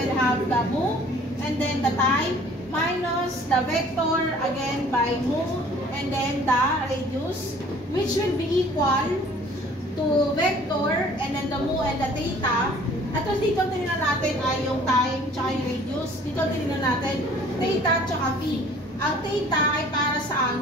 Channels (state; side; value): normal; both; correlation 0.52